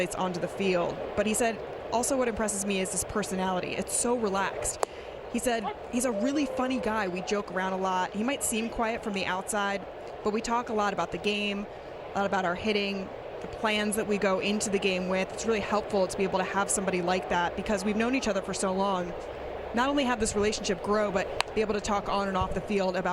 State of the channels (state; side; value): identical; both; correlation 1.00